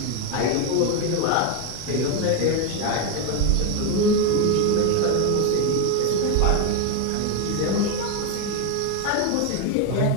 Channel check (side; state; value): both; different; correlation 0.02